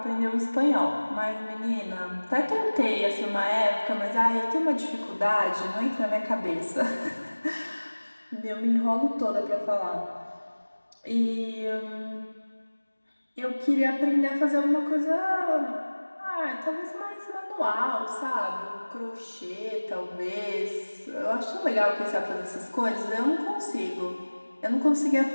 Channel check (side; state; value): both; inverted; correlation -1.00